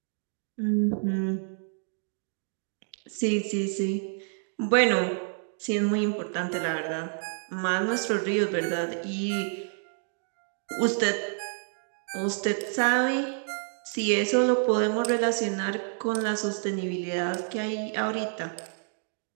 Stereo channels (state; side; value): silent; left; digital silence